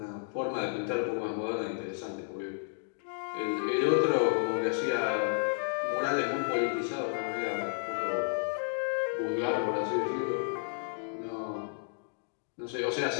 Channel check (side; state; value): right; silent; digital silence